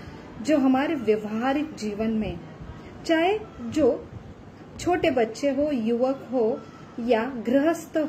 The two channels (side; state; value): both; identical; correlation 1.00